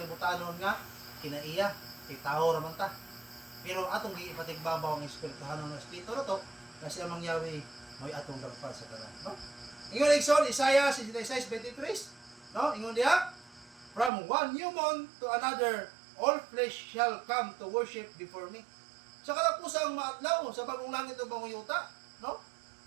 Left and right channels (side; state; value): left; drops out; at 14.1 s